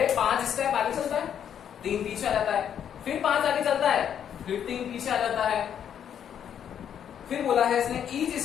5 स्टेप आगे चलता है, 3 पीछे आ जाता है, फिर 5 आगे चलता है, फिर 3 पीछे आ जाता है। फिर बोला है इसने each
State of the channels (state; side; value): quieter; right; 9.0 dB